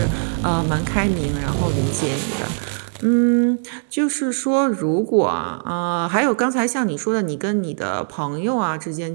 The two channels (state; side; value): silent; left; digital silence